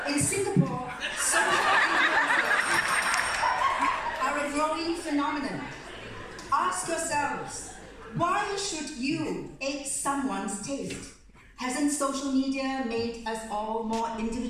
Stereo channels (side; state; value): both; identical; correlation 1.00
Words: In Singapore, social influencers are a growing phenomenon. Ask yourselves, why should you ape someone's taste? Hasn't social media made us all more